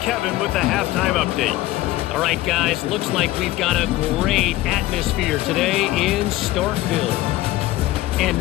with the halftime update. All right, guys, looks like we've got a great atmosphere today in Starkville. And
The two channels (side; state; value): right; quieter; 16.5 dB